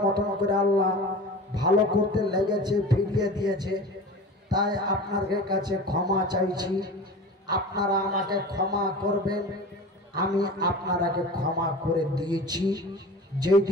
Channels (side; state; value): both; normal; correlation 0.35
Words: মতন করে আল্লাহ ভালো করতে লেগেছে, ফিরিয়ে দিয়েছে, তাই আপনাদের কাছে ক্ষমা চাইছি। আপনারা আমাকে ক্ষমা করবেন। আমি আপনারাকে ক্ষমা করে দিয়েছি।